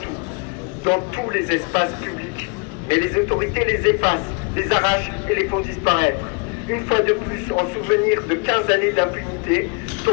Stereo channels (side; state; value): right; quieter; 32.3 dB